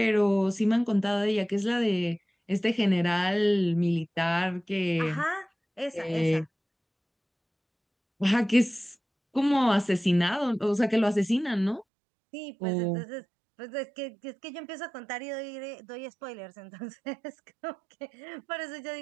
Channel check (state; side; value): drops out; left; at 11.9 s